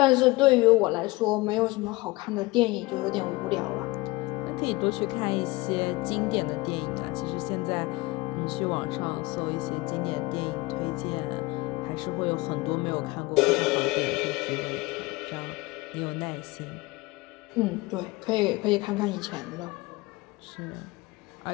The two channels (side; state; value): right; quieter; 21.9 dB